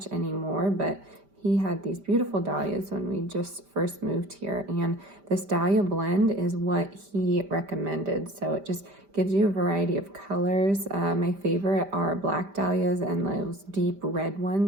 anymore, but he had these beautiful dahlias when we just first moved here, and this dahlia blend is what he recommended. So it just gives you a variety of colors. My favorite are black dahlias and those deep red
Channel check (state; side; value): late; left; 5.1 ms